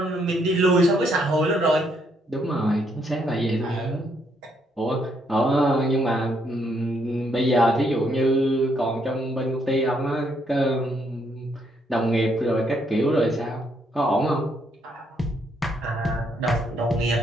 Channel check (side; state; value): both; normal; correlation 0.73